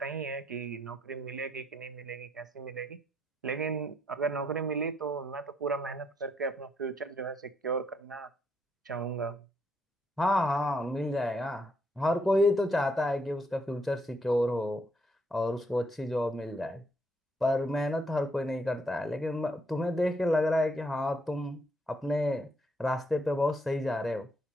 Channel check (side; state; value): both; normal; correlation 0.75